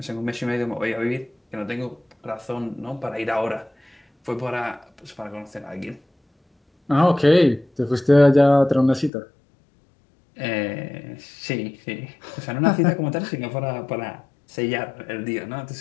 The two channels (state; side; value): drops out; right; at 9.1 s